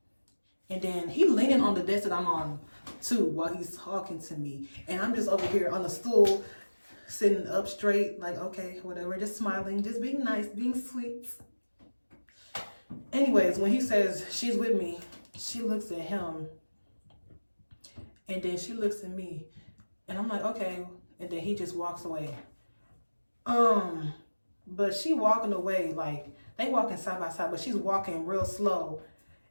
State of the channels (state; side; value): inverted; both; correlation -1.00